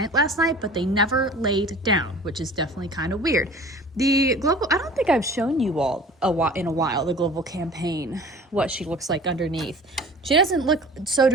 last night, but they never laid down, which is definitely kind of weird. I don't think I've shown you all in a while, the Global Campaign, what she looks like underneath. She doesn't look so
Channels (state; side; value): normal; both; correlation 0.43